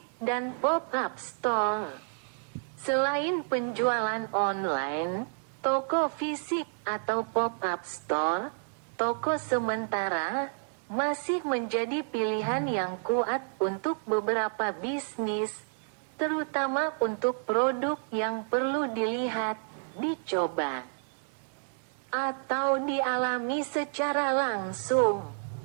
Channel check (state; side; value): silent; left; 58 dB below the other